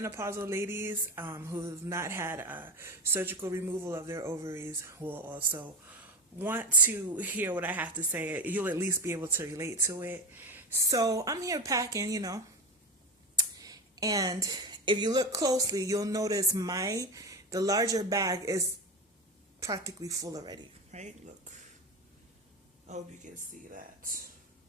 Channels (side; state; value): both; normal; correlation 0.21